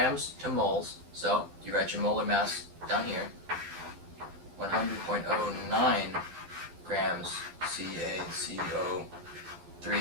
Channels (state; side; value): late; left; 11 ms